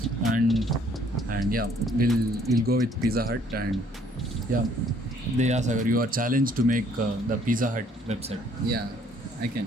and yeah, we'll go with Pizza Hut, and yeah, Sagar, you are challenged to make the Pizza Hut website. Yeah, I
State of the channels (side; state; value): both; normal; correlation 0.61